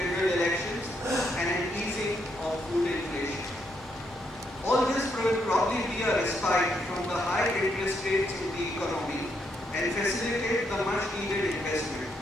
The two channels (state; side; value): normal; both; correlation 0.77